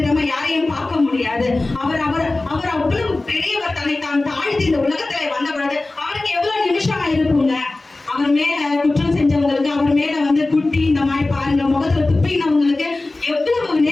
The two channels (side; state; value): right; quieter; 3.1 dB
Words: யாரையும் பார்க்க முடியாது. அவர் அவர் அவர் அவ்வளவு பெரியவர். தன்னை தான் தாழ்த்தி இந்த உலகத்துல வந்த பொழுது அவருக்கு எவ்வளவு நிமிஷம் இருக்குங்க. அவர் மேல குற்றம் செஞ்சவங்களுக்கு, அவர் மேல வந்து குட்டி இந்த மாதிரி பாருங்க முகத்துல துப்பினவங்களுக்கு எவ்வளவு